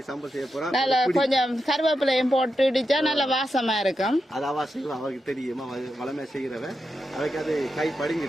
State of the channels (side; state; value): both; normal; correlation 0.87